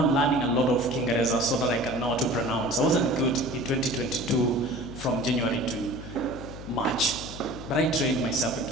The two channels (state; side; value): noise; left; hum, 12 dB below the sound